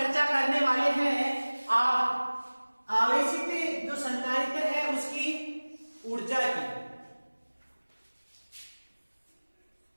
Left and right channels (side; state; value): both; inverted; correlation -1.00